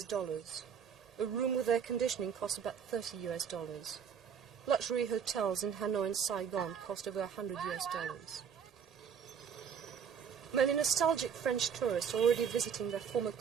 A room with air conditioning costs about $30. Luxury hotels in Hanoi and Saigon cost over $100. Many nostalgic French tourists are already visiting their former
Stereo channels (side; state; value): left; quieter; 7.3 dB